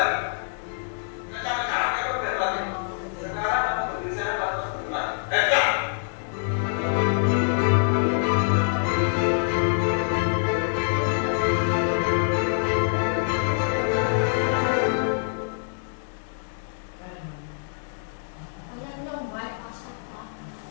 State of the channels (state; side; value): silent; right; digital silence